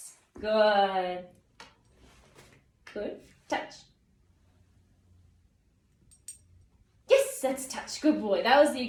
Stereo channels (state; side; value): identical; both; correlation 1.00